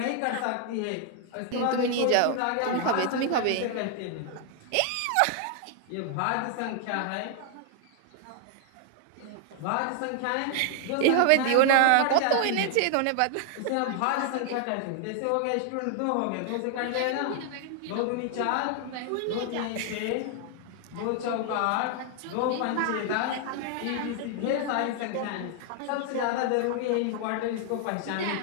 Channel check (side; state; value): both; different; correlation 0.00